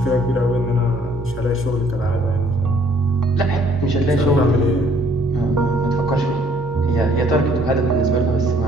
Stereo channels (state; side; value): normal; both; correlation 0.62